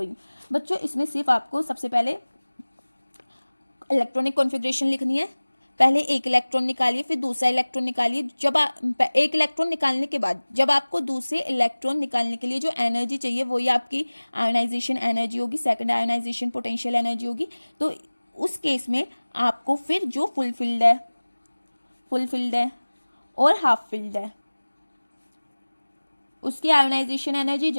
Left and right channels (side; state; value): both; inverted; correlation -1.00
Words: बच्चों इसमें सिर्फ आपको सबसे पहले इलेक्ट्रॉनिक कॉन्फ़िगरेशन लिखनी है। पहले एक इलेक्ट्रॉन निकालिए, फिर दूसरा इलेक्ट्रॉन निकालिए। जब एक इलेक्ट्रॉन निकालने के बाद जब आपको दूसरे इलेक्ट्रॉन निकालने के लिए जो एनर्जी चाहिए वही आपकी आयनाइजेशन एनर्जी होगी, सेकंड आयनाइजेशन पोटेंशियल एनर्जी होगी। तो उस केस में आपको फिर जो फुलफिल्ड है और हाफ फिल्ड है उसकी आयोनाइजेशन एनर्जी